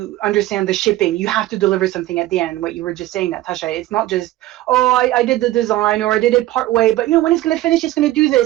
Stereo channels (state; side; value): quieter; left; 15.8 dB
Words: understand the shipping. You have to deliver something at the end. What you were just saying, Natasha, it's not just, oh, I did the design or I did it part way, but you know when it's going to finish, it's going to do